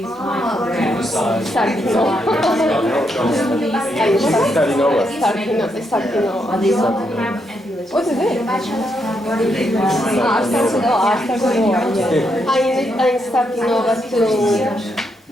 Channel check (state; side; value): normal; both; correlation 0.79